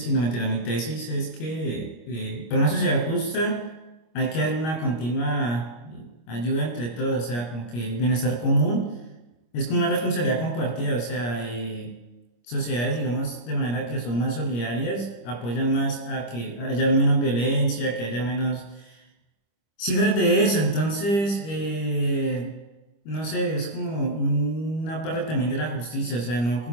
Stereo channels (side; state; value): right; late; 25 ms